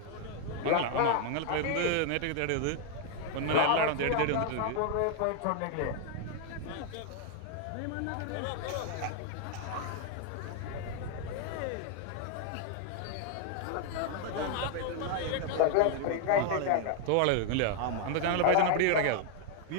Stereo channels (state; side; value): different; both; correlation 0.00